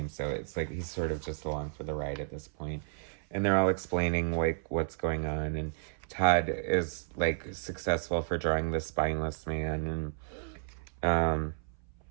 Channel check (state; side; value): silent; left; 56 dB below the other